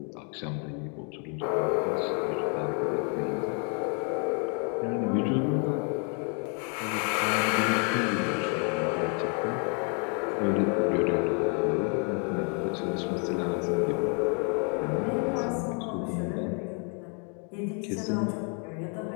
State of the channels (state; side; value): quieter; right; 38.4 dB